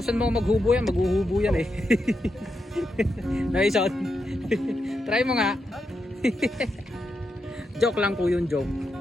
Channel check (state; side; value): normal; both; correlation 0.85